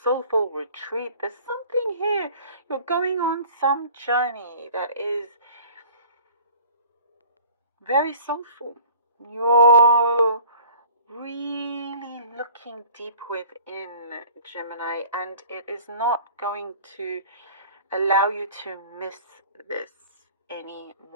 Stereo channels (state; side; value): inverted; both; correlation -0.48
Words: retreat. There's something here. You're going on some journey that is very soulful. You're really looking deep within, Gemini, and it is not going to allow you to miss this